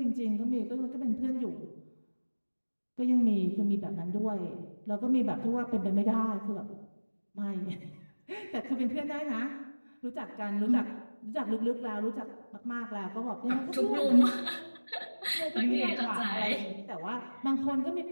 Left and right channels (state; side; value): inverted; both; correlation -1.00